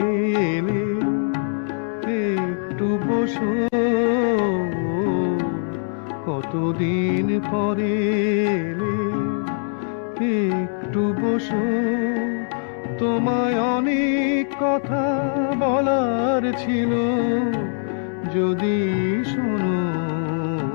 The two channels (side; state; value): right; silent; 64 dB below the other